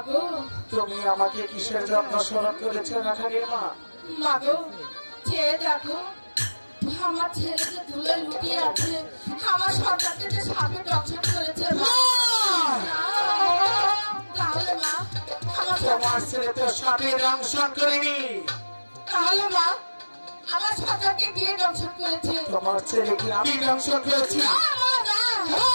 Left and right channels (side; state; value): both; inverted; correlation -1.00